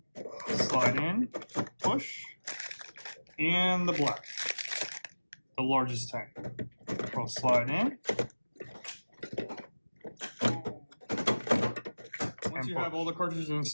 Slide in, push. And the black, the largest tank. We'll slide in. Once you have all the cartridges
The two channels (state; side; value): inverted; both; correlation -1.00